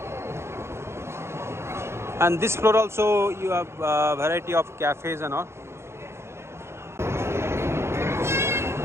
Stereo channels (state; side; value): late; left; 0.13 ms